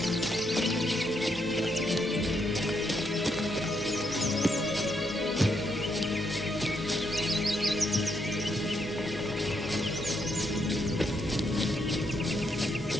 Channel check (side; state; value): both; normal; correlation 0.77